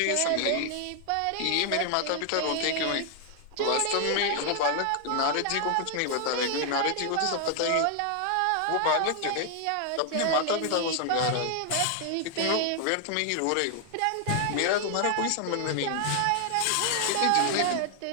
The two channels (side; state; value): both; different; correlation 0.00